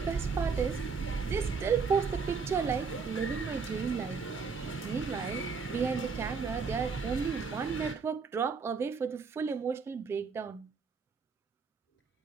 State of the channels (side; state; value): left; quieter; 5.2 dB